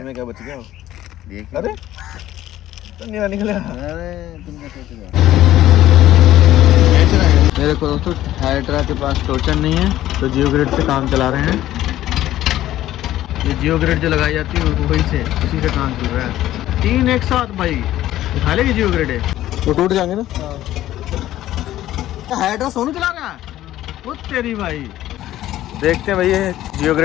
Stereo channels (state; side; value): quieter; right; 13.8 dB